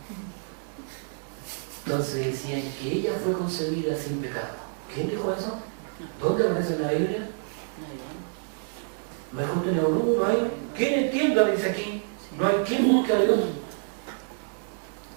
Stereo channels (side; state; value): left; silent; 60 dB below the other